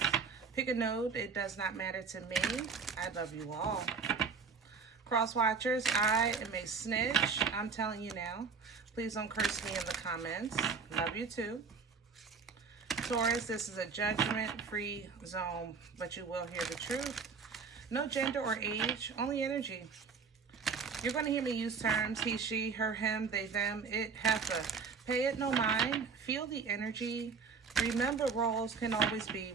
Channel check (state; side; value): quieter; left; 5.3 dB